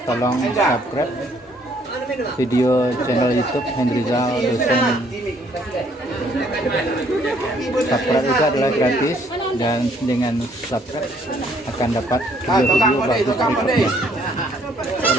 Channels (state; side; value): normal; both; correlation 0.65